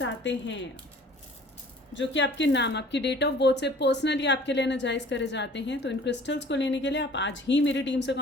हैं जो कि आपके नाम, आपकी डेट ऑफ बर्थ से पर्सनली आपके लिए एनर्जाइज करे जाते हैं, तो इन क्रिस्टल्स को लेने के लिए आप आज ही मेरी टीम से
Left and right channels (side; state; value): both; normal; correlation 0.50